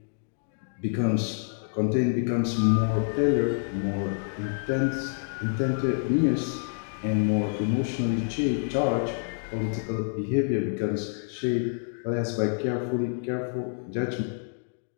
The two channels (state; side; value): silent; right; digital silence